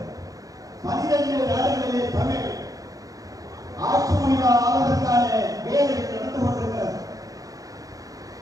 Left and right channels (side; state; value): left; late; 0.17 ms